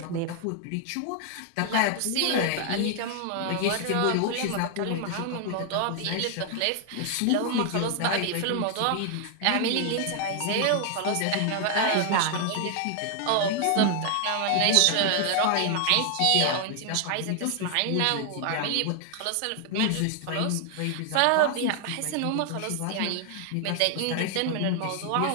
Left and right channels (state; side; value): different; both; correlation 0.00